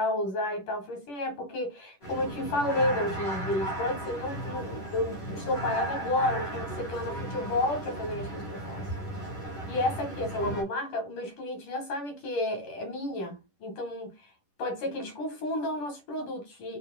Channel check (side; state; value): right; late; 10 ms